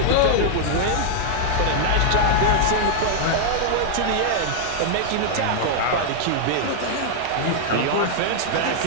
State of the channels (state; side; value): different; both; correlation -0.01